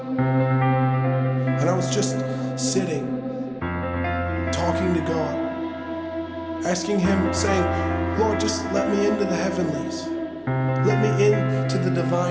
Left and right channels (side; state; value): both; identical; correlation 1.00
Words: I was just sitting, talking to God, asking Him, saying, Lord, just let me into the heavenlies. Let me into the